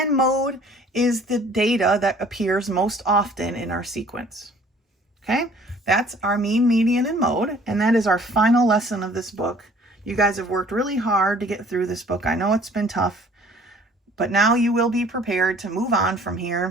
mode is the data that appears most often in our sequence. Okay, that's our mean, median, and mode, and that is our final lesson of this book. You guys have worked really hard to get through this book. I know it's been tough, but now you will be prepared to move on from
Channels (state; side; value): normal; both; correlation 0.54